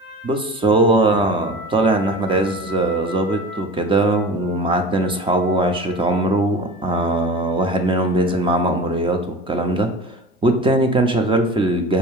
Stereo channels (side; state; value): both; normal; correlation 0.37